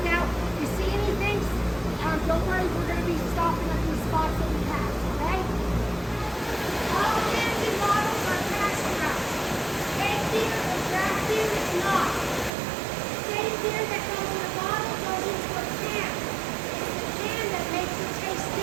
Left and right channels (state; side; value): drops out; left; at 12.5 s